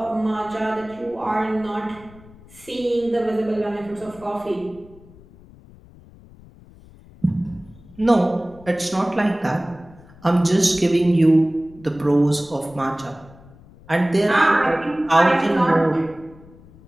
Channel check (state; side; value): noise; left; rumble, 23 dB below the sound